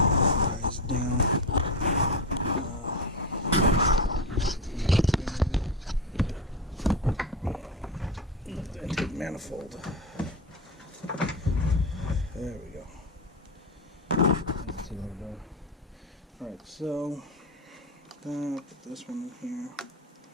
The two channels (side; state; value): both; normal; correlation 0.16